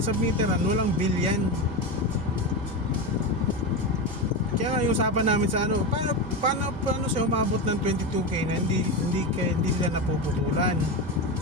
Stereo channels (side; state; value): both; normal; correlation 0.17